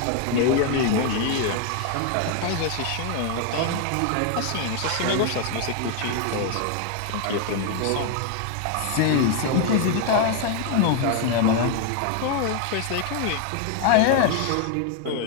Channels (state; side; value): different; both; correlation 0.01